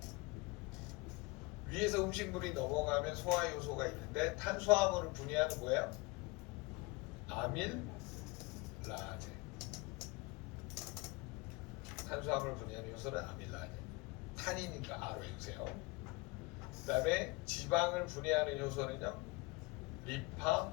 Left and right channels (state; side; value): quieter; right; 25.1 dB